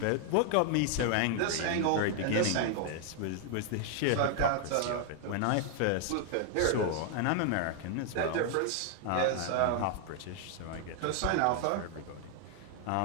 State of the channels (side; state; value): both; different; correlation 0.00